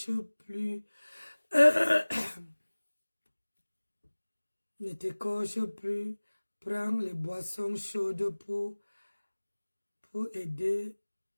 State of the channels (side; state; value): both; inverted; correlation -1.00